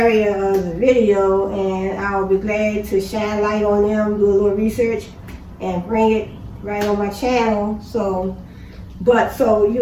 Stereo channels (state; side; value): identical; both; correlation 1.00